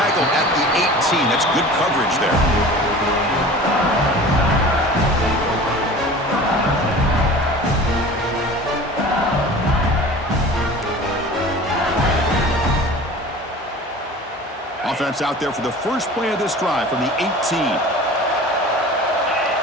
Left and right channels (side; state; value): both; normal; correlation 0.40